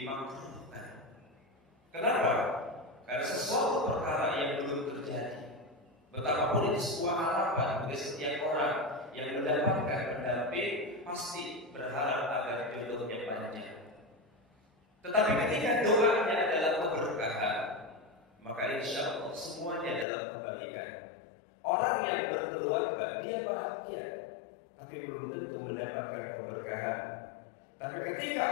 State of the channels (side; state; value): right; drops out; at 20.1 s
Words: Kenapa? Karena sesuatu perkara yang belum terjadi, betapapun itu sebuah harapan bagi setiap orang yang mendapatkan pendamping pasti berharap agar jodohnya panjang. Tetapi ketika doanya adalah keberkahan, maka insya Allah semuanya adalah kebaikan. Orang yang berkeluarga dia bahagia, tapi belum tentu mendapatkan keberkahan. Tapi ketika